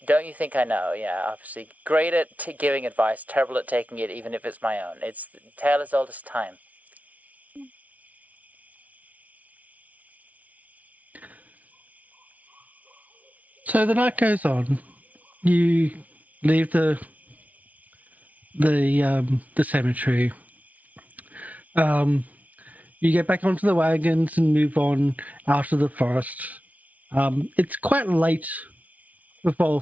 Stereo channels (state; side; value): late; left; 0.071 ms